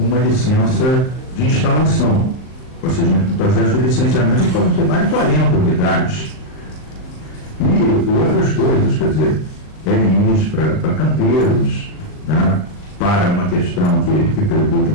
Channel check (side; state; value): right; late; 38 ms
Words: licença de instalação. Ou seja, no processo de licenciamento podem ser mais de 40 unidades. E outras coisas, quer dizer, LIs para canteiros, né, para uma questão que preocupa